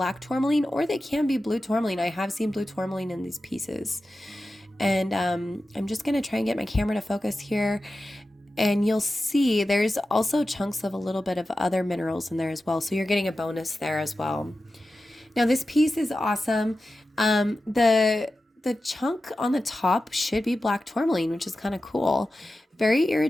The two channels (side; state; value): both; normal; correlation 0.93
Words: tourmaline or they can be blue tourmaline. I have seen blue tourmaline in these pieces. And I'm just going to try and get my camera to focus here. And you'll see there's also chunks of a little bit of other minerals in there as well. So you're getting a bonus there as well. Now this piece is awesome. The chunk on the top should be black tourmaline, which is kind of cool. Very